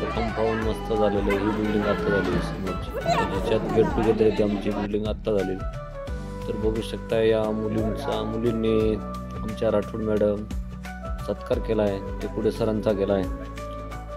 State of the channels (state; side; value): identical; both; correlation 1.00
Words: कंपाऊंड मस्त झालेलं आहे। ही बिल्डिंग आता झाली त्याच्यात गेट टुगेदर आहे, आमची बिल्डिंग आता झालेली। तर बघू शकता या मुलींनी आमच्या राठोड मॅडम सत्कार केला आहे, ते पुढे सरांचा केला आहे।